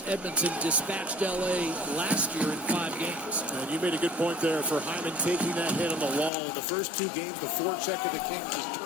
Edmonton dispatched L.A. last year in 5 games. And you made a good point there for Hyman taking that hit on the wall. In the first 2 games, the forecheck of the Kings has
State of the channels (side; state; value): right; drops out; at 6.3 s